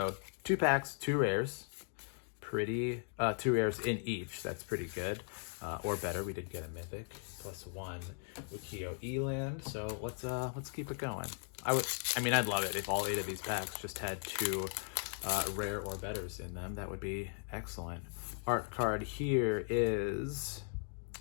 2 packs, 2 rares. Pretty, 2 rares in each. That's pretty good. Or better, we did get a mythic plus 1 Wikio Eland. So let's keep it going. I'd love it if all 8 of these packs just had 2 rare or betters in them. That would be excellent. Art card here is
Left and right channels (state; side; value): silent; right; 53 dB below the other